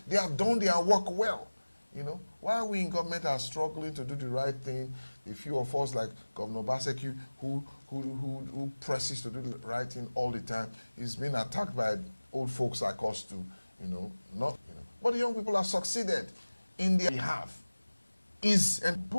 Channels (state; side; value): inverted; both; correlation -1.00